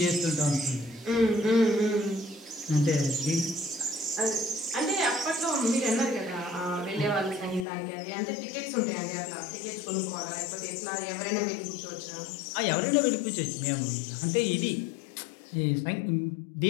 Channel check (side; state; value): right; drops out; at 7.7 s